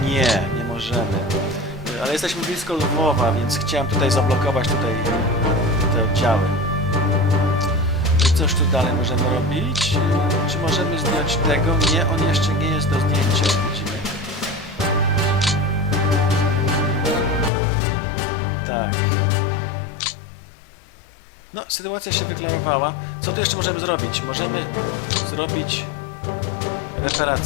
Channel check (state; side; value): drops out; right; at 17.5 s